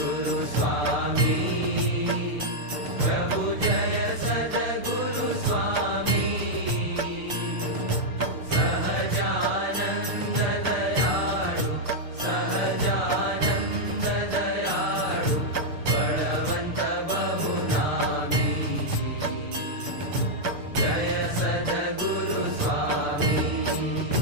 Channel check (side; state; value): left; late; 6.7 ms